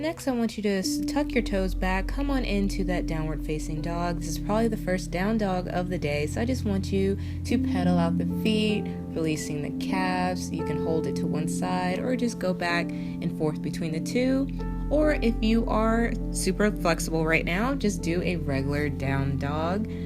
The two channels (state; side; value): identical; both; correlation 1.00